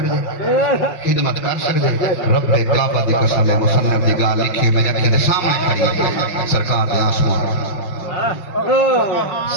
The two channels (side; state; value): right; late; 5.6 ms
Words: خدمت کر سکتے رب کعبہ دی قسم ہے مصنف دی گال لکھی میں اکھیں دے سامنے کھڑی ہے سرکار دے آنسو